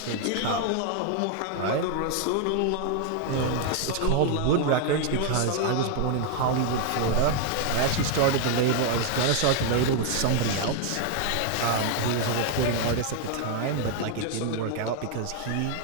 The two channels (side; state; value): both; different; correlation 0.00